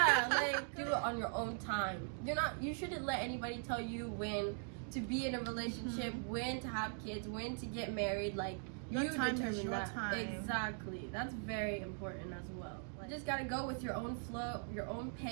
like do it on your own time. You shouldn't let anybody tell you when to be in a relationship, when to have kids, when to get married. Like, your you time determine is your that. time. Exactly. That's very important as well. Like, you just gotta go with your own flow, your own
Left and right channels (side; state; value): left; silent; 51 dB below the other